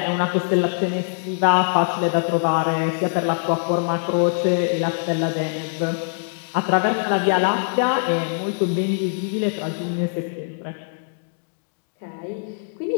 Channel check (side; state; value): right; silent; digital silence